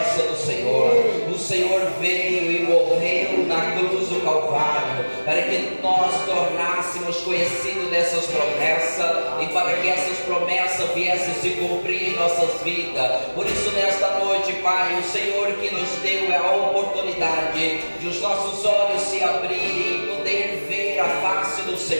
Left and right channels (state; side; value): inverted; both; correlation -1.00